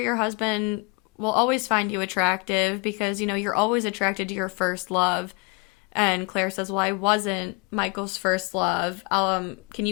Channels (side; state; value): right; quieter; 29.4 dB